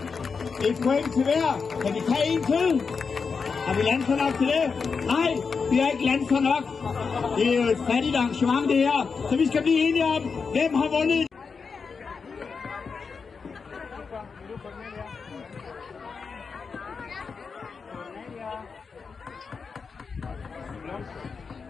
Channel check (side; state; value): right; quieter; 5.3 dB